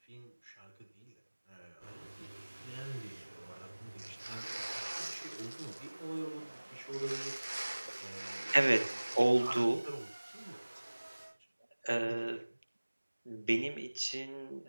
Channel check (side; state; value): both; inverted; correlation -1.00